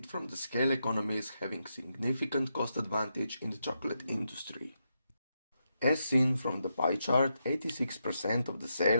from the scale economies having significant cost advantage in the chocolate industry. As seen from the pie chart, 86% of the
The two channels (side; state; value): both; inverted; correlation -0.84